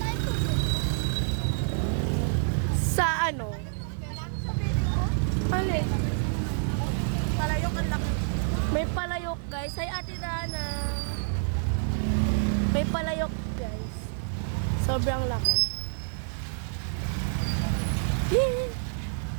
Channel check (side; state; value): left; silent; digital silence